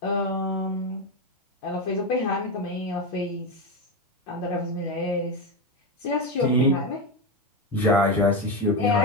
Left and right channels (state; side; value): normal; both; correlation 0.12